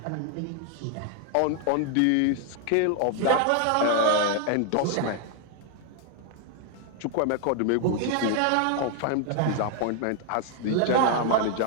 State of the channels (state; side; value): different; both; correlation 0.00